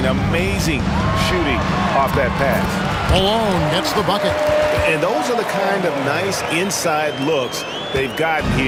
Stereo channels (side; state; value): both; identical; correlation 1.00